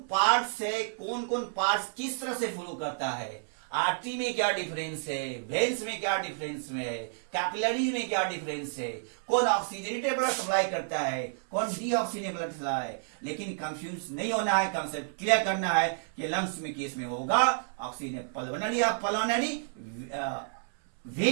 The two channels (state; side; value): silent; left; 58 dB below the other